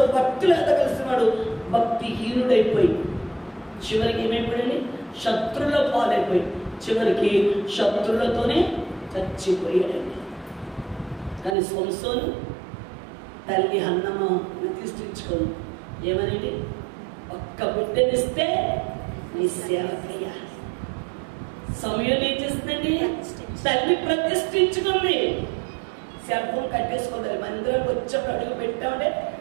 భక్తులు ఎదగలిసిన వాడు భక్తిహీనుడైపోయి చివరికి ఏమైపోయాడు? శత్రువుల పాలైపోయి చివరికి శత్రువులతోనే చచ్చిపోయాడండి. కానీ సంసోను తల్లి హన్నమ్మ ప్రతిష్ఠించుకోను ఏమనండి? ఒక్క బిడ్డనిస్తే నీ సేవకయ్యా. సమయం ఏం చేస్తుందండి? తల్లి ప్రతిష్ఠించుకుంది. Cell phone కట్టేసుకోవాలి. మందిరం వచ్చేప్పుడు అడుగు పెట్టామంటే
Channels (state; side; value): drops out; left; at 11.6 s